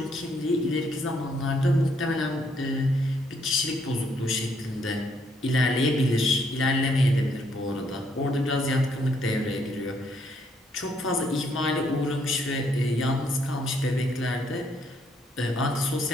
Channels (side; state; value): both; normal; correlation 0.71